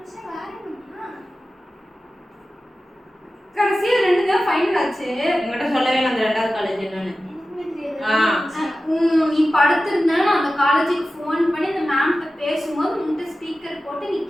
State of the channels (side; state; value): both; normal; correlation 0.94